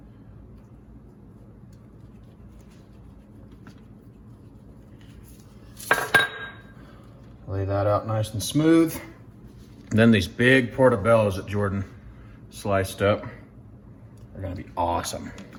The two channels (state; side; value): identical; both; correlation 1.00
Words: Lay that out nice and smooth. And then these big portobellos that Jordan sliced up are gonna be awesome.